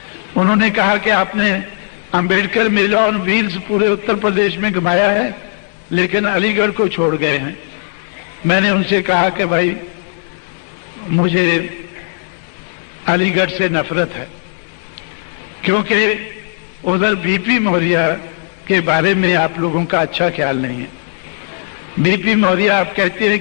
उन्होंने कहा कि आपने अंबेडकर मेला और व्हील्स पूरे उत्तर प्रदेश में घुमाया है, लेकिन अलीगढ़ को छोड़ गए हैं। मैंने उनसे कहा कि भाई मुझे अलीगढ़ से नफरत है, क्योंकि उधर बीपी मौर्य के बारे में आप लोगों का अच्छा ख्याल नहीं है। बीपी मौर्य आप कहते हैं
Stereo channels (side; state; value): right; silent; digital silence